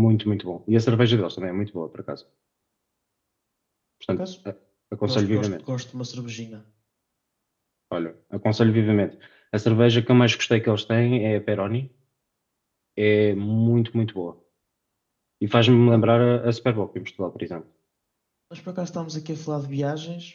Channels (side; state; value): both; identical; correlation 1.00